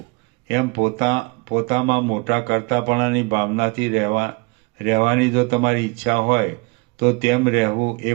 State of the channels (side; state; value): left; quieter; 28.1 dB